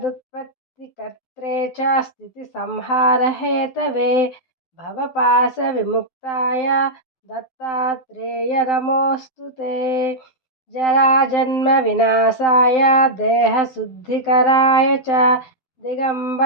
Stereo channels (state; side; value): late; right; 12 ms